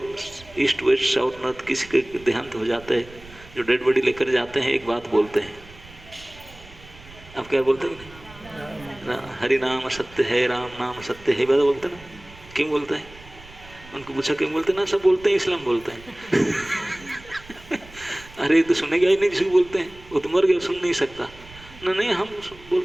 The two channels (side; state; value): right; noise; rumble, 21 dB below the sound